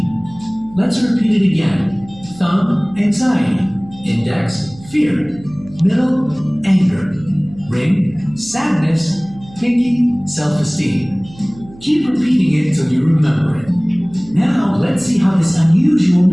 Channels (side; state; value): right; noise; hum, 21 dB below the sound